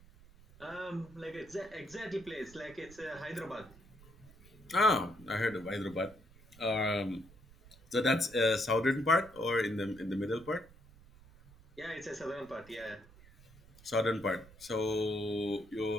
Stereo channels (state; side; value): noise; right; rumble, 23 dB below the sound